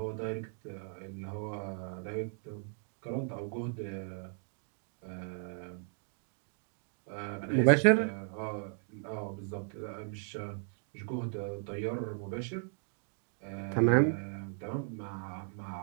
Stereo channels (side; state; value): left; silent; 54 dB below the other